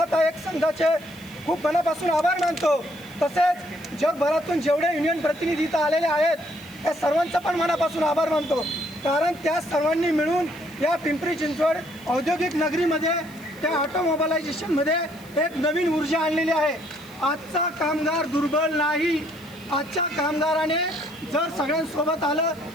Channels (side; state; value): left; noise; hiss, 24 dB below the sound